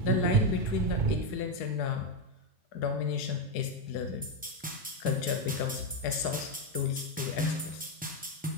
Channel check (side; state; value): both; normal; correlation 0.06